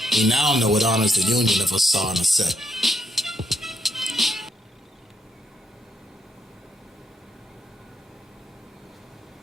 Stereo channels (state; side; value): normal; both; correlation 0.78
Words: we now know it honors the union of Asar and Aset.